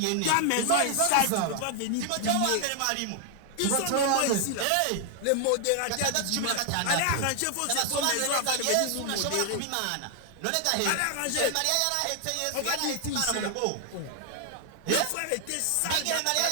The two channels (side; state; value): both; different; correlation 0.00